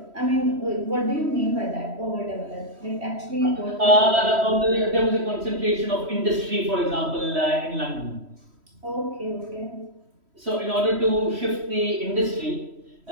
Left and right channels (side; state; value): left; late; 3.1 ms